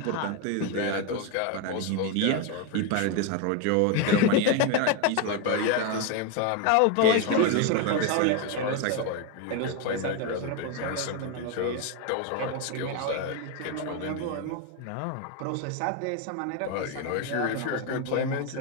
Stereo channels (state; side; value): different; both; correlation 0.02